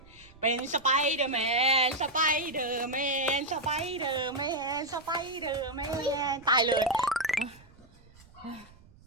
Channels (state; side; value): noise; right; rumble, 24 dB below the sound